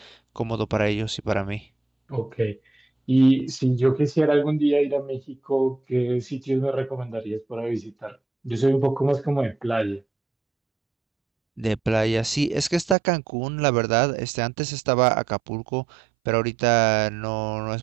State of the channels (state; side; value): drops out; left; at 13.0 s